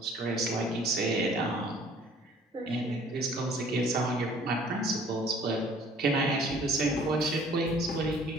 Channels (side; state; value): both; normal; correlation 0.54